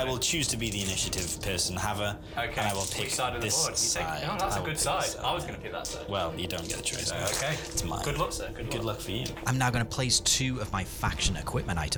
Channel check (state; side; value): identical; both; correlation 1.00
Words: I it. will choose to be the initiative person, Haver, Okay. and I will pick Which side of the this board? You side. take, no, that's I a will good pick side. this I was going to pick that side. Well, you don't get the choice. Okay. It's mine. Good luck, sir. Good luck for you. I'm now going to place 2 of my faction equipment